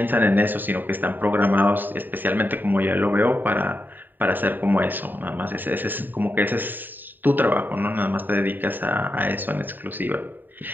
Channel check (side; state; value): left; late; 0.091 ms